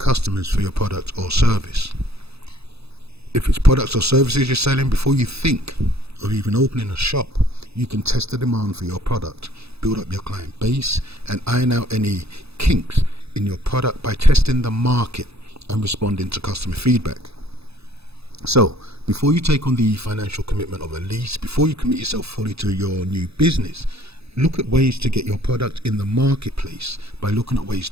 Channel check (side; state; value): left; late; 0.79 ms